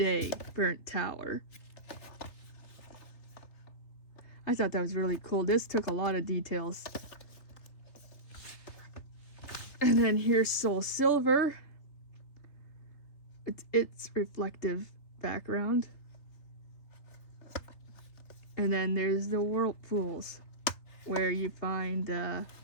Burnt Tower. I thought that was really cool. This took a lot of details. And then here's Soul Silver. It's reflective background. And then there's the Whirlpools, where you find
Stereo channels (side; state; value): right; late; 3.3 ms